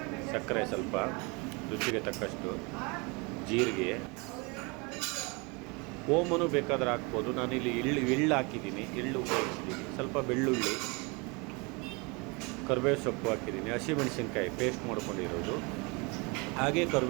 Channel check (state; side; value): quieter; left; 29.0 dB